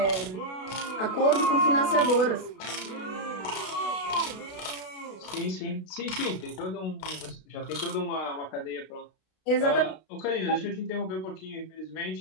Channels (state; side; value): late; right; 32 ms